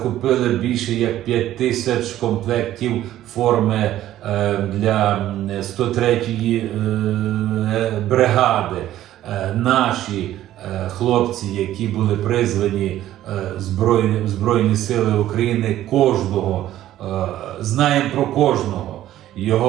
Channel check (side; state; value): left; quieter; 13.3 dB